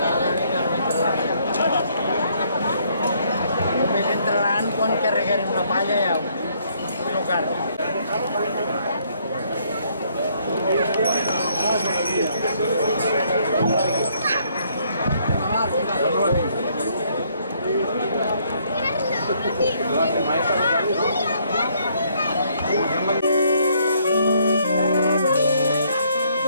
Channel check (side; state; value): both; inverted; correlation -0.68